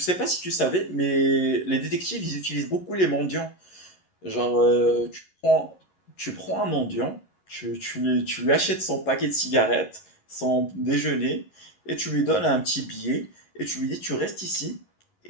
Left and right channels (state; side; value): late; right; 11 ms